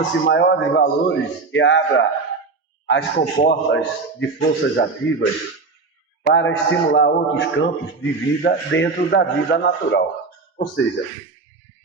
maiores valores e abra as comportas de forças ativas para estimular outros campos de vida dentro da vida natural. Ou seja,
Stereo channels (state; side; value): quieter; left; 4.1 dB